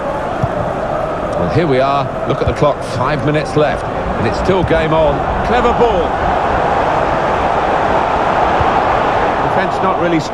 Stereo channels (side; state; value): both; identical; correlation 1.00